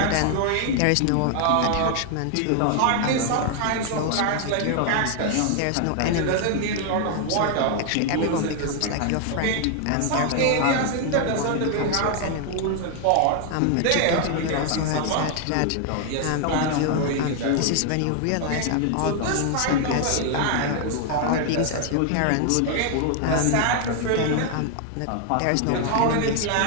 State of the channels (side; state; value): both; different; correlation 0.00